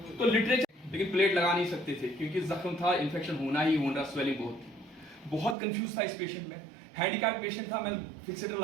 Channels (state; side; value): drops out; left; at 5.6 s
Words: तो लिटरेचर, लेकिन प्लेट लगा नहीं सकते थे क्योंकि जख्म था, इन्फेक्शन होना ही होना, स्वेलिंग बहुत कंफ्यूज था इस पेशेंट में। हैंडीकैप पेशेंट था, मैं फिक्सेटर